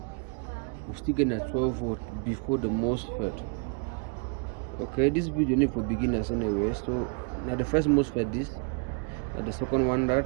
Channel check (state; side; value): quieter; left; 35.4 dB